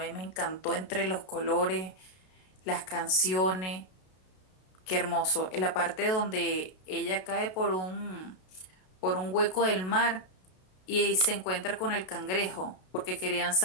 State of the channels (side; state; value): right; late; 32 ms